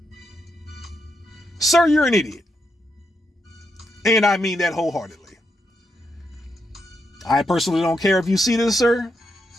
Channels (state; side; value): normal; both; correlation 0.81